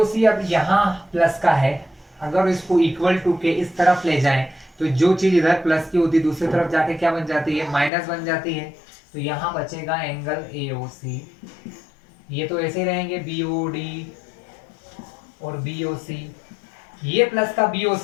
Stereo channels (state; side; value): drops out; right; at 7.9 s